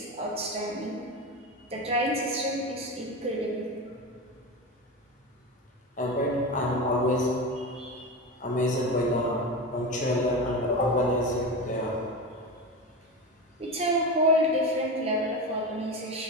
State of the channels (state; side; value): normal; both; correlation 0.22